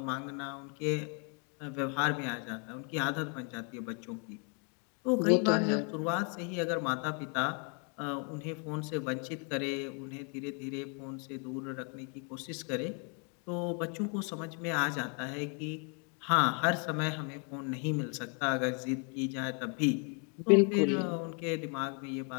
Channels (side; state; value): right; quieter; 38.4 dB